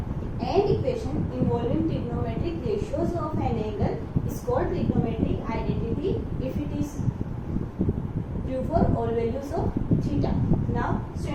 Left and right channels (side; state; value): both; identical; correlation 1.00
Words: An equation involving trigonometric ratios of an angle is called trigonometric identity if it is true for all values of theta. Now